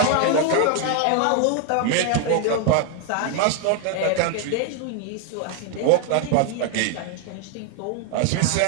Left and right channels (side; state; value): both; different; correlation 0.00